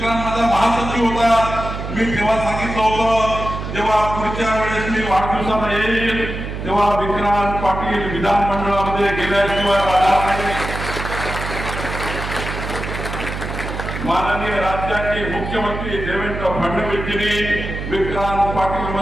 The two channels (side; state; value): right; noise; hum, 6 dB below the sound